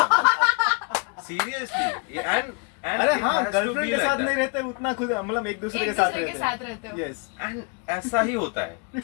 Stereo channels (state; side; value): quieter; right; 33.1 dB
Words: सीरियसली। अरे हाँ, गर्लफ्रेंड के साथ नहीं रहते उतना खुद, मतलब एक दूसरे के साथ रहते हो। यस। एंड ऐसा ही होता है,